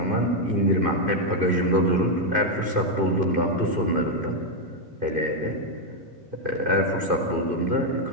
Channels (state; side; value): late; left; 2.5 ms